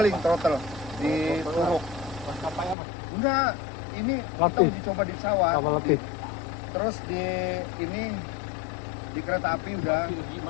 throttle di Turuk. Maskapai apa? Enggak, ini kita uji coba di pesawat. Terus di ini di kereta api udah.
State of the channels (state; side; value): drops out; right; at 2.8 s